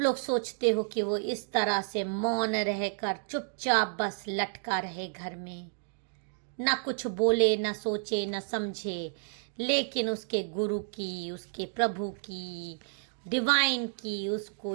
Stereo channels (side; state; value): left; silent; digital silence